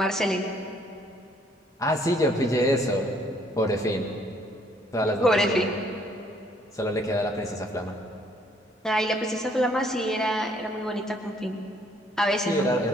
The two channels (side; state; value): both; normal; correlation 0.64